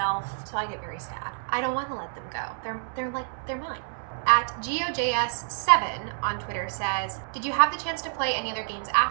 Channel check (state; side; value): silent; left; 60 dB below the other